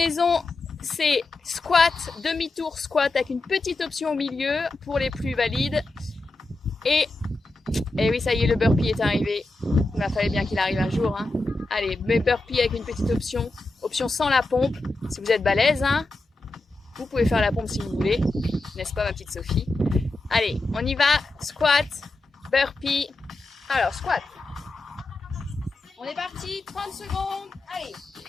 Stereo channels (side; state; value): right; quieter; 3.1 dB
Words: C'est squat, demi-tour squat avec une petite option au milieu pour les plus valides. Et oui, ça y est, le burpee est arrivé. Il fallait bien qu'il arrive un jour. Hein. Allez, mais burpee avec une petite option. Option sans la pompe. Si vous êtes balèze, hein, vous pouvez faire la pompe si vous voulez. N'est-ce pas, ma petite Sophie? Allez, on y va. Squat, burpee. Alors, squat. On est parti. 30 secondes. Allez.